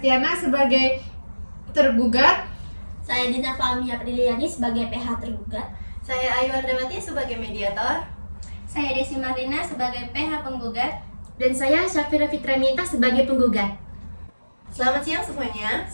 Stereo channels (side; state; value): both; inverted; correlation -1.00